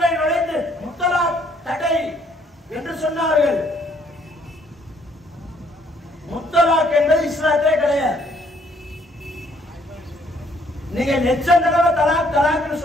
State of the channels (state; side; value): normal; both; correlation 0.66